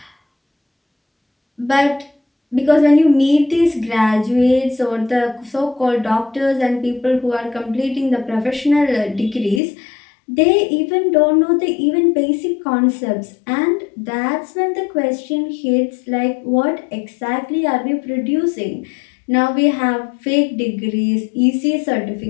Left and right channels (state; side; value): drops out; right; at 9.6 s